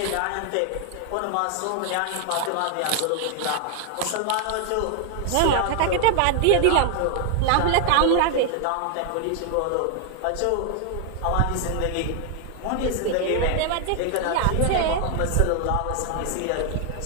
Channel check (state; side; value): different; both; correlation 0.00